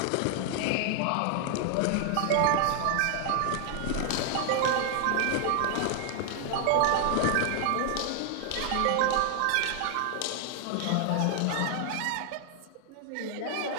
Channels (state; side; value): different; both; correlation 0.00